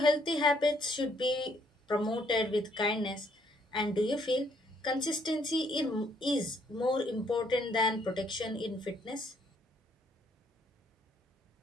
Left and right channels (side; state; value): both; normal; correlation 0.68